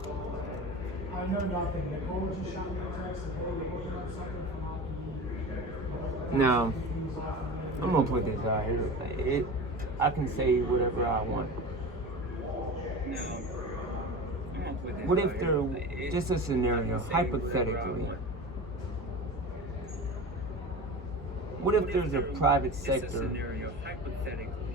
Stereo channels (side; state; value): both; normal; correlation 0.31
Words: I know nothing. Nicole just shot me a text and, hey, we're working on something from hockey. No, I'm gonna put this out here. I can say whatever I want. No, What if there, just a scenario, hypothetically, what if there's a private sector